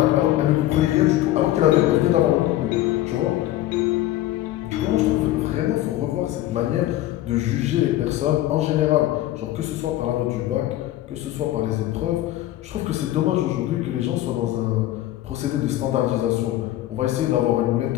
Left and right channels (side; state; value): right; quieter; 14.6 dB